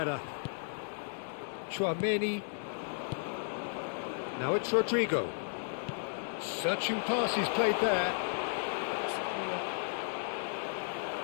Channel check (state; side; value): silent; right; digital silence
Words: Chouameni. Now it's Rodrigo. Searching pass he's played there.